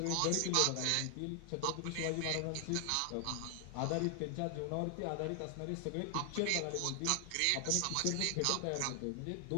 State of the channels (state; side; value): different; both; correlation 0.00